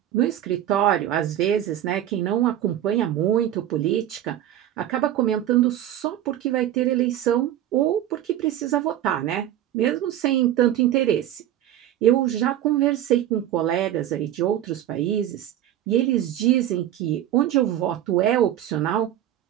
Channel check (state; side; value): quieter; left; 11.9 dB